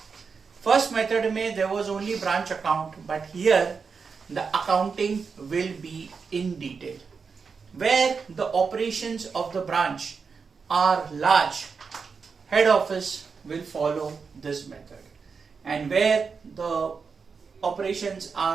First method there was only branch account, but here the accounting will be in detail. Where the operations of the branch are large, head office will follow this method, and where the operations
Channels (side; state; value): left; quieter; 5.4 dB